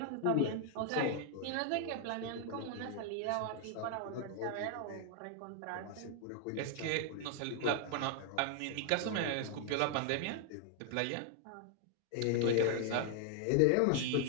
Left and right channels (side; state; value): both; different; correlation 0.00